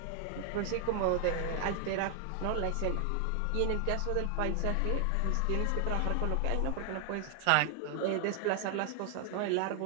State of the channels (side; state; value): both; different; correlation 0.00